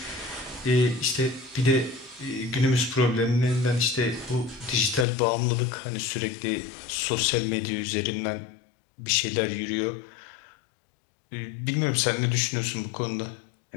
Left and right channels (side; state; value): right; drops out; at 5.1 s